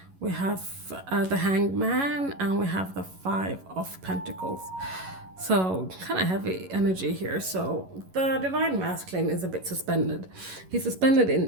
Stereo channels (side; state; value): left; late; 11 ms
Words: We have the Hanged Man, and we have the 5 of Pentacles. So kind of heavy energy here. So the divine masculine is a bit suspended. He's suspended